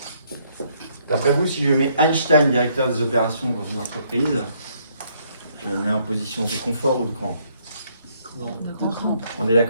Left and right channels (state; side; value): inverted; both; correlation -0.69